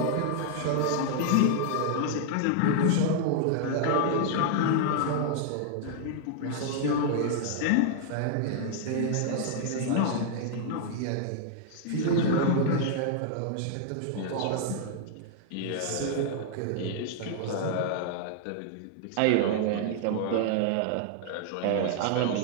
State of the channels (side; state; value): both; different; correlation -0.01